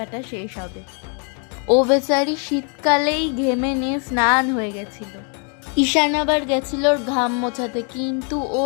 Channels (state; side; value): quieter; right; 38.0 dB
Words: শেষ হবে। ও বেচারি শীতকালেই ঘেমে নিয়ে স্নান হয়ে গেছিল। ঈশান আবার গেছিল ওর ঘাম মোছাতে, কিন্তু ও